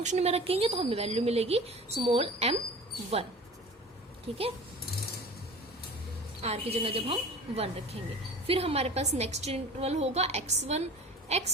में रखेंगे तो हमें वैल्यू मिलेगी स्मॉल m1, ठीक है। R की जगह जब हम 1 रखेंगे, फिर हमारे पास नेक्स्ट इंटरवल होगा x1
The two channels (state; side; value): normal; both; correlation 0.40